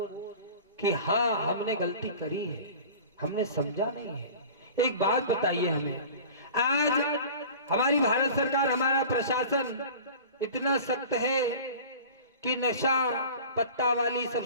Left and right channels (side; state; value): both; inverted; correlation -0.40